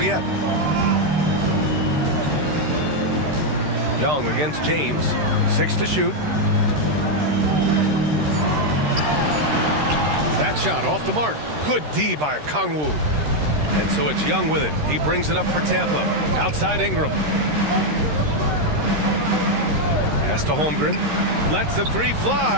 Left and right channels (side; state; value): left; late; 13 ms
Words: yet. Young against James. 6 to shoot. That shot off the mark. Good D by Kongwu. And so it's Young with it. He brings it up for Tampa. Outside Ingram. Pass to Holmgren. Lets the 3